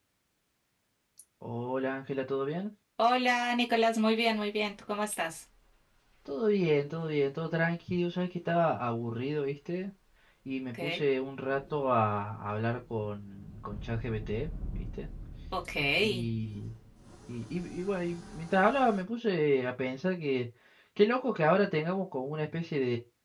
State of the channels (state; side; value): identical; both; correlation 1.00